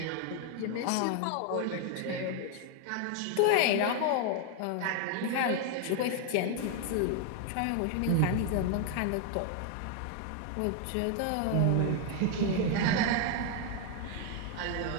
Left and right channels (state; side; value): different; both; correlation 0.00